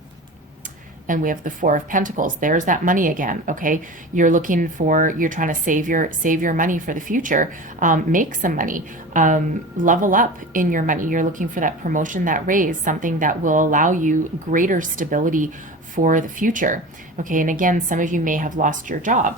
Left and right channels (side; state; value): both; normal; correlation 0.33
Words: And we have the Four of Pentacles. There's that money again. Okay, you're trying to save your money for the future. Make some money. Level up in your money. You're looking for that promotion, that raise, something that will allow you greater stability for the future. Okay, and again, some of you may have lost your